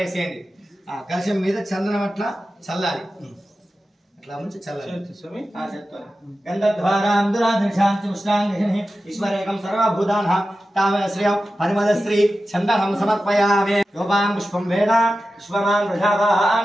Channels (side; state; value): both; normal; correlation 0.93